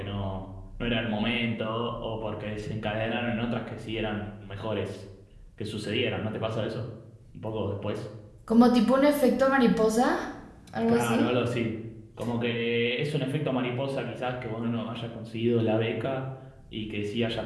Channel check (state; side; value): identical; both; correlation 1.00